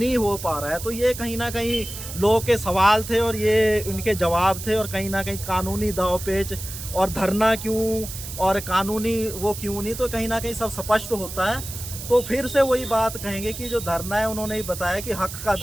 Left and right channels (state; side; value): noise; right; hiss, 10 dB below the sound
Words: हो पा रहा है। तो ये कहीं ना कहीं लोगों के सवाल थे और ये उनके जवाब थे, और कहीं ना कहीं कानूनी दावपेच और धरना क्यों और कानूनी वो क्यों नहीं, तो कहीं ना कहीं सब स्पष्ट होता है। तो फिर से वही बात कहेंगे कि जो धरना है, उन्होंने ही बताया कि हक का